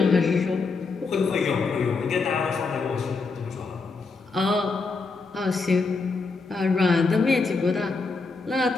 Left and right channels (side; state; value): right; quieter; 4.2 dB